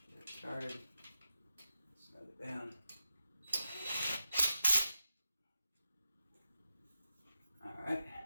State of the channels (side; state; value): both; inverted; correlation -0.90